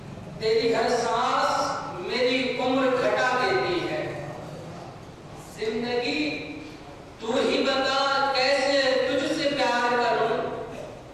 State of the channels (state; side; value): identical; both; correlation 1.00